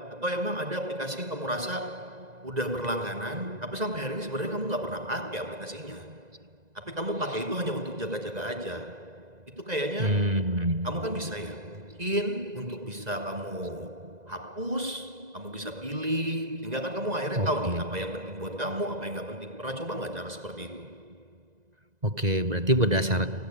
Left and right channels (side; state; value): left; late; 2.0 ms